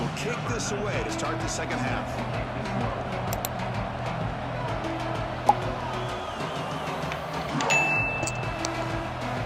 kick this away to start the second half.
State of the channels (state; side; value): identical; both; correlation 1.00